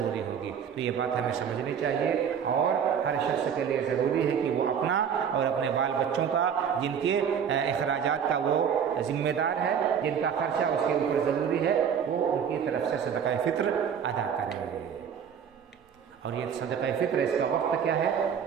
ہوگی۔ تو یہ بات ہمیں سمجھنی چاہیے، اور ہر شخص کے لیے ضروری ہے کہ وہ اپنا اور اپنے بال بچوں کا، جن کے اخراجات کا وہ ذمہ دار ہے، جن کا خرچہ اس کے اوپر ضروری ہے، وہ ان کی طرف سے صدقہ فطر ادا کریں گے۔ اور یہ صدقہ فطر اس کا وقت کیا ہے؟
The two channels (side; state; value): left; quieter; 7.7 dB